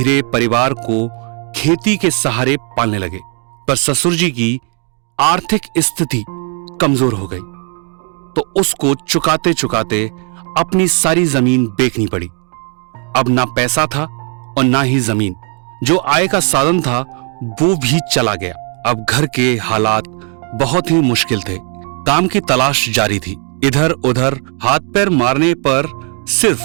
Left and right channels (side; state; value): left; quieter; 38.5 dB